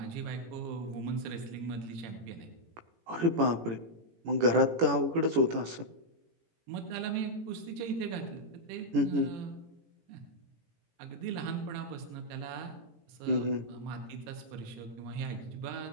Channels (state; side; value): late; left; 18 ms